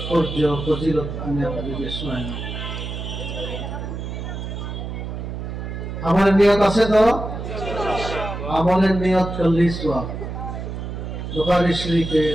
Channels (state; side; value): noise; right; hum, 6 dB below the sound